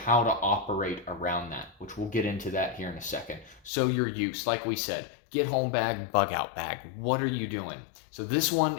to operate around that, which we'll get into that here in a second. So your use, like we said, get home bag, bug out bag. What are you doing? So this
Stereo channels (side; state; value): right; drops out; at 3.7 s